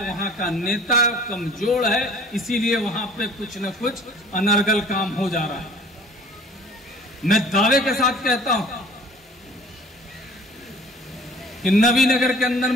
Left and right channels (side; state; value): both; normal; correlation 0.49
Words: वहां का नेता कमजोर है, इसीलिए वहां पे कुछ न कुछ अनर्गल काम हो जा रहा है। मैं दावे के साथ कहता हूं कि नवीनगर के अंदर